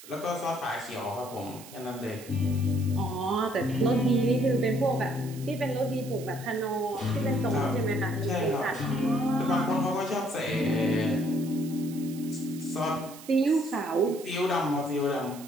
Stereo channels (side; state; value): right; noise; hiss, 17 dB below the sound